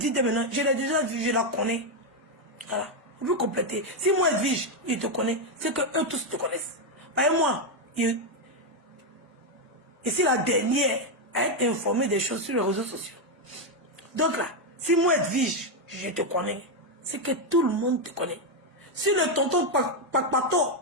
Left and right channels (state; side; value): normal; both; correlation 0.04